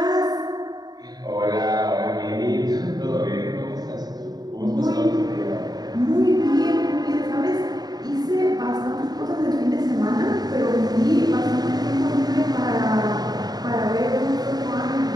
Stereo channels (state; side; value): late; left; 0.19 ms